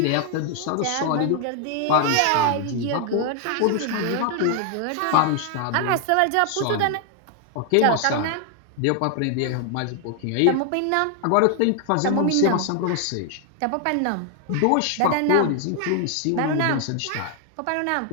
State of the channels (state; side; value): different; both; correlation 0.00